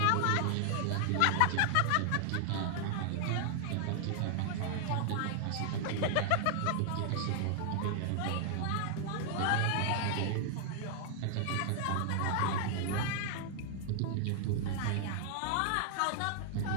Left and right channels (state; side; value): different; both; correlation 0.00